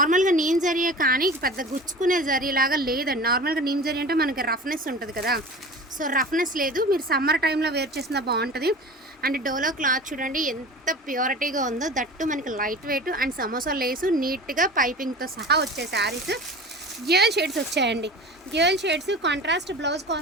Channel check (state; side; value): normal; both; correlation 0.36